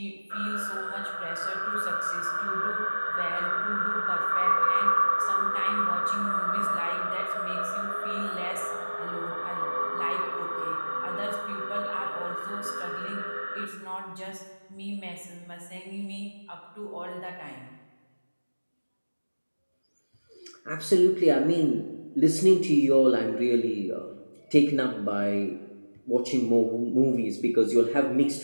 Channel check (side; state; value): both; inverted; correlation -1.00